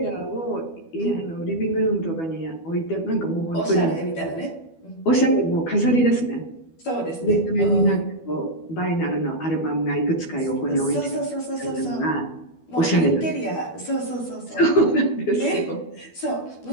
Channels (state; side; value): late; right; 12 ms